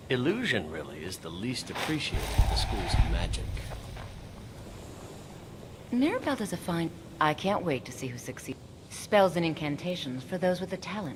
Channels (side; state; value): both; identical; correlation 1.00